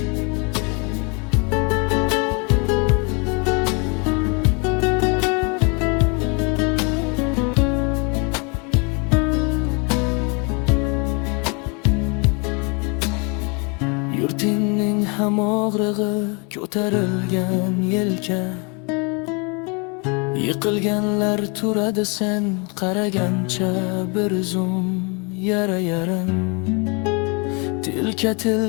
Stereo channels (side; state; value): right; quieter; 32.4 dB